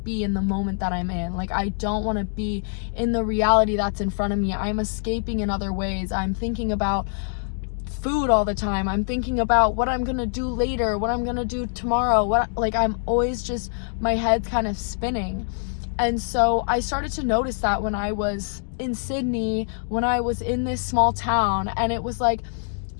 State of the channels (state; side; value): silent; right; digital silence